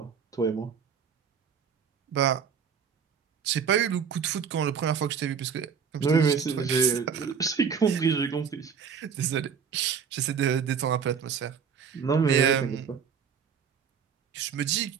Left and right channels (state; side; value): quieter; left; 6.8 dB